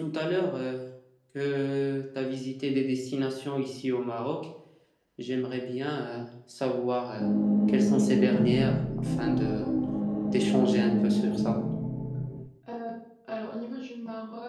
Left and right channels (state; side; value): identical; both; correlation 1.00